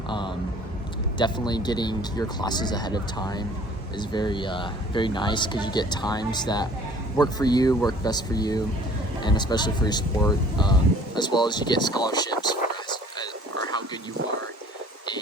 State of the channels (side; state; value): both; normal; correlation 0.52